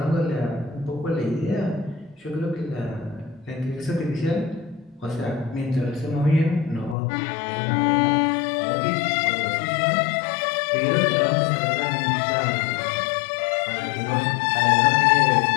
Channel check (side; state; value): right; drops out; at 7.0 s